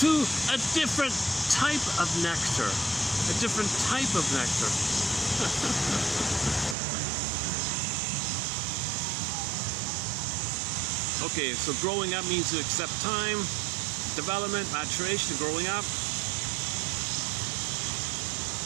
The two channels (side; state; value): left; drops out; at 6.8 s